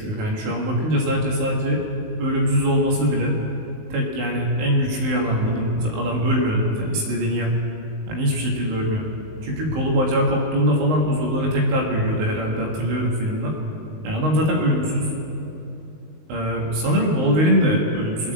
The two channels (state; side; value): late; left; 19 ms